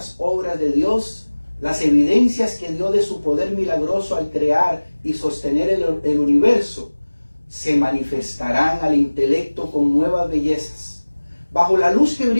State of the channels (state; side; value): inverted; both; correlation -1.00